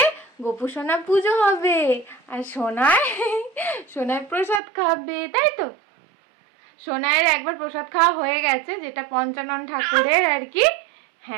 গোপু সোনা পুজো হবে, আর সোনাই প্রসাদ খাবে, তাই তো? সোনাইয়ের একবার প্রসাদ খাওয়া হয়ে গেছে, যেটা পঞ্চানন ঠাকুরের আর কি।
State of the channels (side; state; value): left; drops out; at 4.6 s